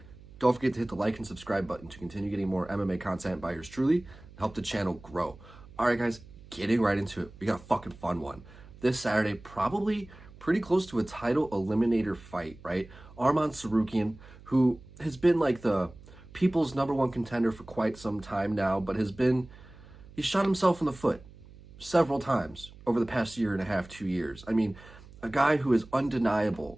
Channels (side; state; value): right; noise; hum, 20 dB below the sound